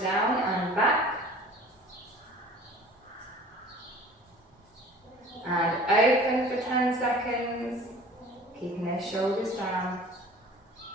down and back. And open for 10 seconds, keeping those shoulders down.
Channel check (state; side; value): normal; both; correlation 0.45